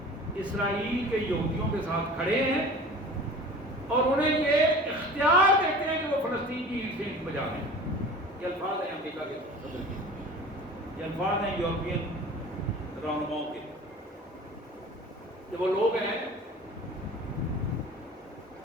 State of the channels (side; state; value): both; normal; correlation 0.40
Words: اسرائیل کے یہودیوں کے ساتھ کھڑے ہیں، اور انہیں یہ اختیار دیتے ہیں کہ وہ فلسطین کی اینٹ سے اینٹ بجا دیں. یہ الفاظ ہیں امریکہ کے صدر کے، یہ الفاظ ہیں یورپین رہنماؤں کے، کہ وہ لوگ ہیں